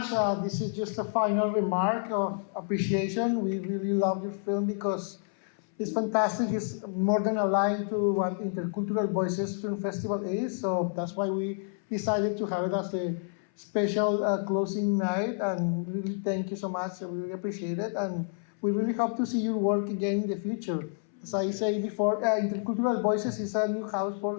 This is just a final remark of appreciation. We really love your film because it's fantastic. It's more than aligned to what Intercultural Voices Film Festival is. So that's why we decided to have it as a special closing night. And really thank you so much. I really appreciate it. And we really hope to see your work again in the future. As I say before, Intercultural Voices is a new house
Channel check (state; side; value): silent; right; 58 dB below the other